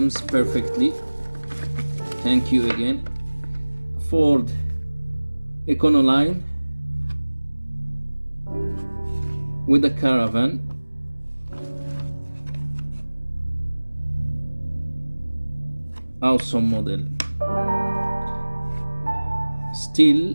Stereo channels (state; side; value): inverted; both; correlation -1.00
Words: perfectly. Thank you again. Ford Econoline with a caravan. Awesome model.